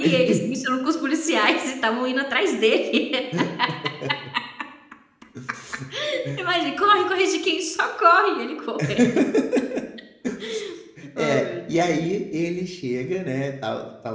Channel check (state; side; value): identical; both; correlation 1.00